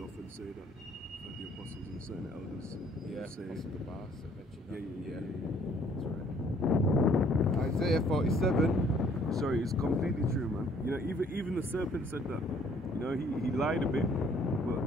say that the apostles and certain elders say, yeah. That's right. Isaiah 47. Sorry, it's completely true, man. You know, even the serpent said that. You know, he lied a bit, but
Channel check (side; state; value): both; normal; correlation 0.61